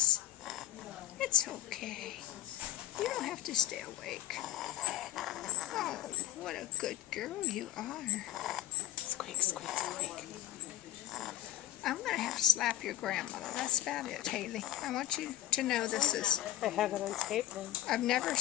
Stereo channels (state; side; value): quieter; right; 13.2 dB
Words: It's okay. You don't have to stay awake. Oh, what a good girl you are. Squeak, squeak, squeak. I'm going to have to slap your grandmother. That's about it, Haley. I want you to know this is... I have it on tape now. I've never